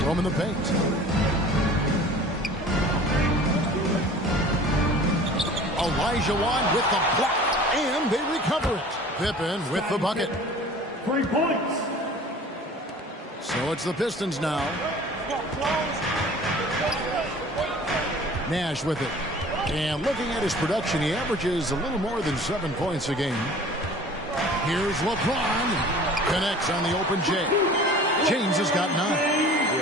roaming the paint. Olajuwon with the block. And they recover it. Pippen with the bucket. 3 points. So it's the Pistons now. Nash with it. And looking at his production, he averages a little more than 7 points a game. Here's LeBron. Connects on the open J. James has got 9.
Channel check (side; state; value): both; normal; correlation 0.45